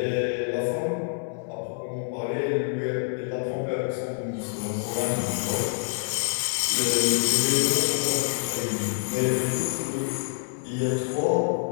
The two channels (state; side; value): silent; right; 60 dB below the other